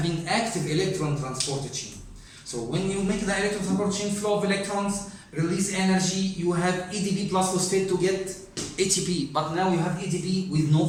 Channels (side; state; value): both; identical; correlation 1.00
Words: active electron transport chain. So when you make the electron transport chain flow of electrons, release energy, you have ATP plus phosphate to get ATP, but now you have ATP with no